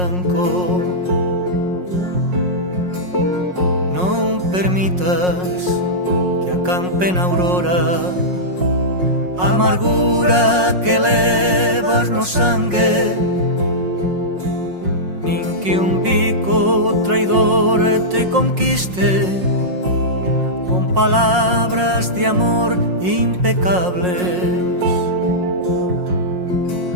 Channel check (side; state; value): left; late; 5.5 ms